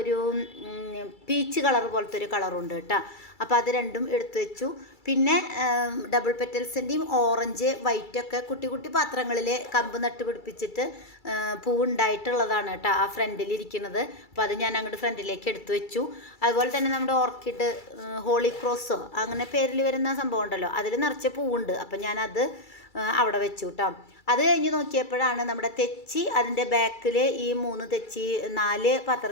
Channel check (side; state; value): right; late; 2.3 ms